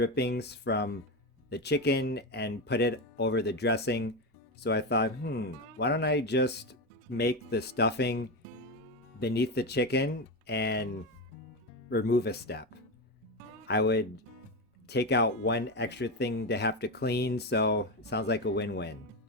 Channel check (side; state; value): both; normal; correlation 0.15